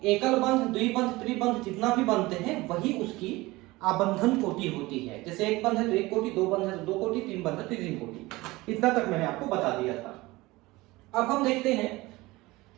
एकल बंध, द्विबंध, त्रिबंध जितना भी बनते हैं वही उसकी आबंधन कोटि होती है। जैसे एक बंध है तो एक कोटि, दो बंध है तो दो कोटि, तीन बंध है तो तीन कोटि। इतना तक मैंने आपको बता दिया था। अब हम देखते हैं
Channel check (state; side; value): quieter; left; 20.6 dB